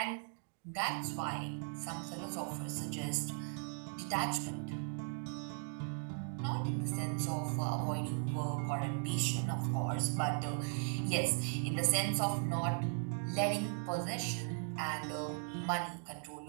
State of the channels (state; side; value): silent; left; 52 dB below the other